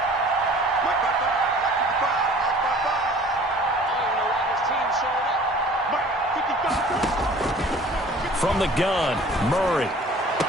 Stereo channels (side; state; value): both; normal; correlation 0.49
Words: From the gun, Murray.